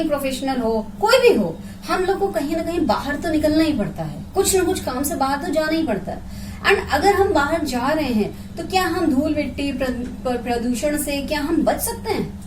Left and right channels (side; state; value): both; identical; correlation 1.00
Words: प्रोफेशनल हो, कोई भी हो, हम लोग को कहीं ना कहीं बाहर तो निकलना ही पड़ता है, कुछ ना कुछ काम से बाहर तो जाना ही पड़ता है। एंड अगर हम बाहर जा रहे हैं तो क्या हम धूल मिट्टी प्रदूषण से क्या हम बच सकते हैं?